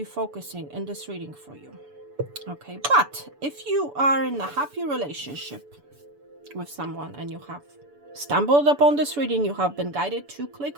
focusing in this reading for you. Okay. But if you are in a happy relationship with someone and you have stumbled upon this reading, you have been guided to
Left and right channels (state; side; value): late; left; 6.9 ms